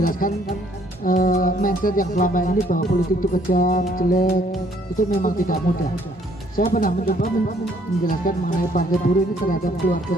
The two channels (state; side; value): normal; both; correlation 0.64